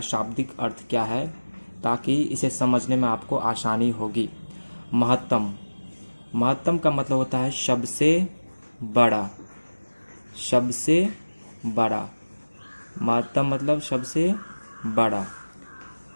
शाब्दिक अर्थ क्या है, ताकि इसे समझने में आपको आसानी होगी। महत्तम महत्तम का मतलब होता है सबसे बड़ा, सबसे बड़ा। महत्तम मतलब सबसे बड़ा।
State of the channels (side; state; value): both; inverted; correlation -1.00